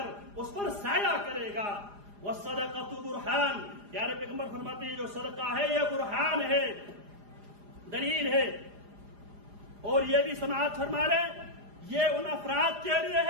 اس پر سایہ کرے گا۔ والصدقۃ برہان، پیارے پیغمبر فرماتے ہیں جو صدقہ ہے یہ برہان ہے، دلیل ہے۔ اور یہ بھی سماعت فرما لیں یہ ان افراد کے لیے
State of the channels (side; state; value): left; late; 4.9 ms